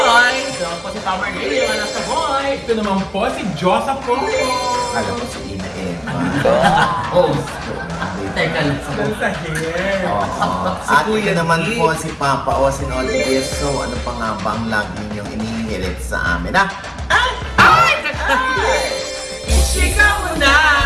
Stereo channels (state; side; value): identical; both; correlation 1.00